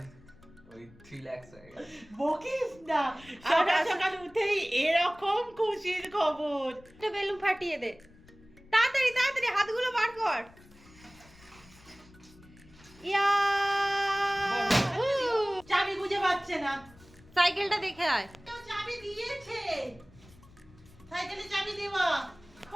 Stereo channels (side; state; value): left; noise; rumble, 24 dB below the sound